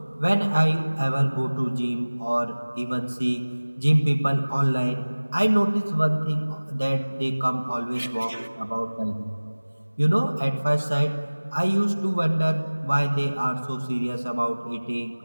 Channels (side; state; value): both; inverted; correlation -1.00